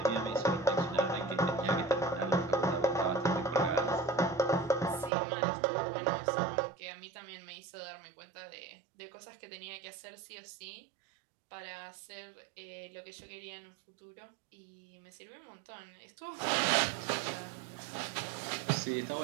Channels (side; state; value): left; drops out; at 5.1 s